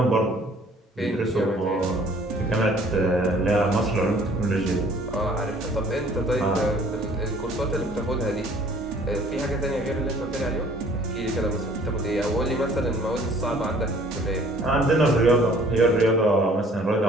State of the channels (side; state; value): both; normal; correlation 0.55